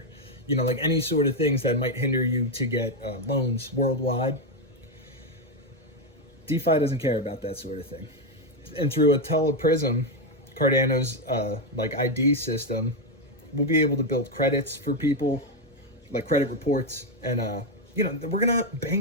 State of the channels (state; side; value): normal; both; correlation 0.06